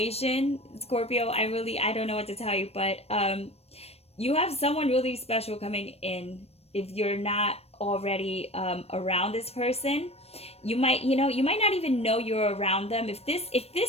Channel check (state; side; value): late; right; 0.29 ms